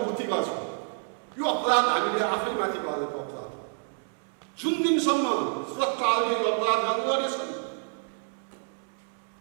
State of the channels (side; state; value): left; silent; 56 dB below the other